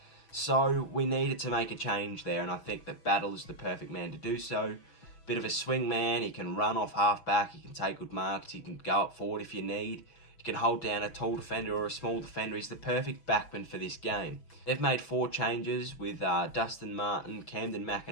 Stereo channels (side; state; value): right; late; 6.0 ms